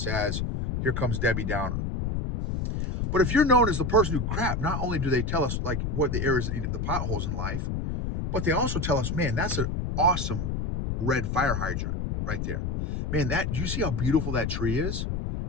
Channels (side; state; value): left; noise; rumble, 1 dB below the sound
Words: as, here comes Debbie Downer. But if you're known as the person who, crap, not only do they tell us like what the areas that need the potholes in life, but they also tell us, man, that's an awesome red fire hydrant right there. Man, do you see how beautiful that tree is?